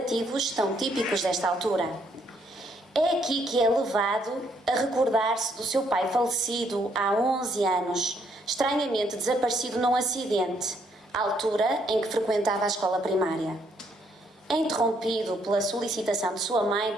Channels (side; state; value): both; normal; correlation 0.71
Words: tão típicos desta altura. É aqui que é levado a recordar-se do seu pai falecido há 11 anos, estranhamente desaparecido num acidente, à altura em que frequentava a escola primária. É interrompido pela solicitação de sua mãe